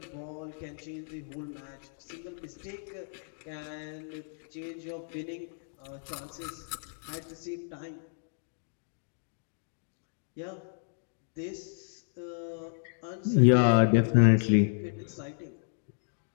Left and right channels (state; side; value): silent; right; digital silence